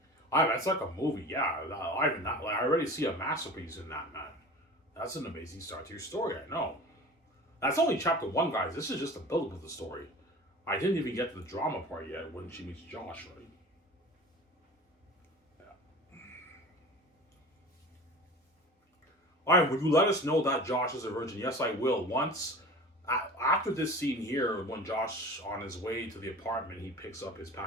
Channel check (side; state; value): both; normal; correlation 0.38